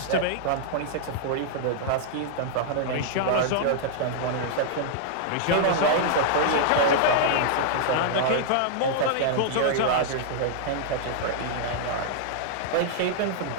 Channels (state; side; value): different; both; correlation -0.01